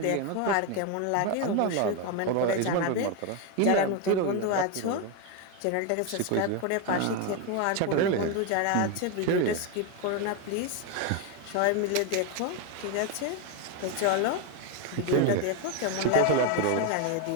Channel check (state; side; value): different; both; correlation 0.02